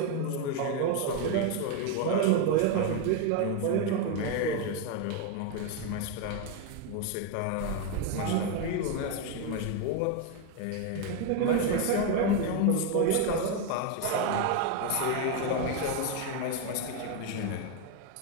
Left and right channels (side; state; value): both; different; correlation 0.01